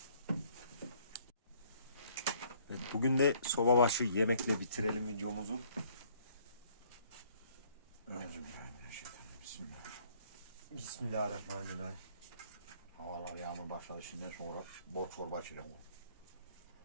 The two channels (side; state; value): both; inverted; correlation -0.62